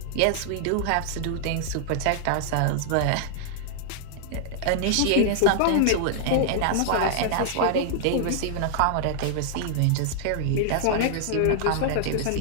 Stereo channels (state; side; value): different; both; correlation -0.01